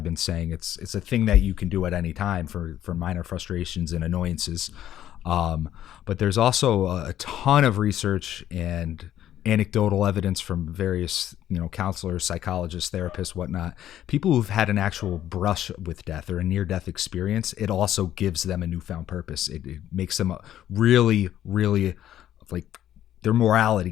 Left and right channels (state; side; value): quieter; right; 11.7 dB